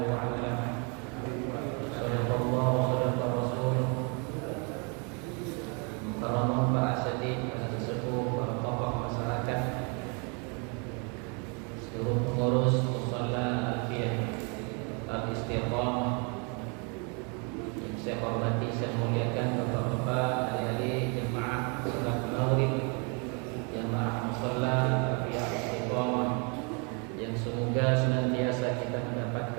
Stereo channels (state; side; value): quieter; left; 34.8 dB